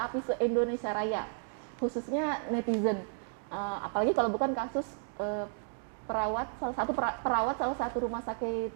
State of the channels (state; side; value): silent; left; digital silence